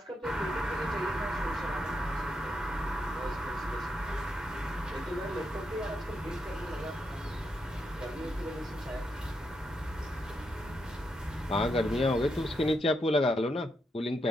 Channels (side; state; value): both; normal; correlation 0.82